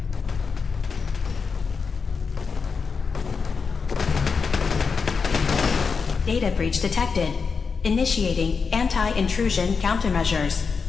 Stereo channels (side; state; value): right; quieter; 5.3 dB